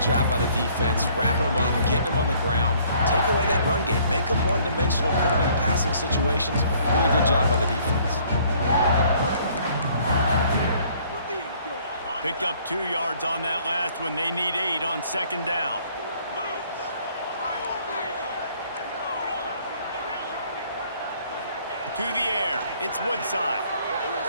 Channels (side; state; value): both; inverted; correlation -0.60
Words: job by the defense, wrapping them up, getting them on the ground. Take away that run game. Make them one-dimensional, put them in passing situations. Really good job by the defense. Picked up 2 yards on that last one. They need 8 on second down. To the air. It's Woodside.